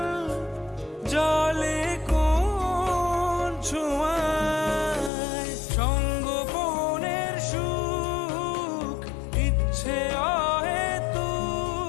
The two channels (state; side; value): drops out; right; at 5.1 s